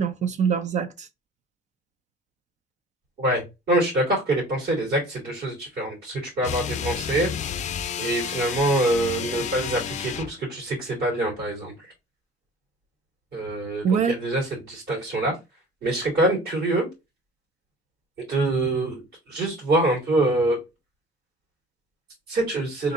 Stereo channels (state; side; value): normal; both; correlation 0.45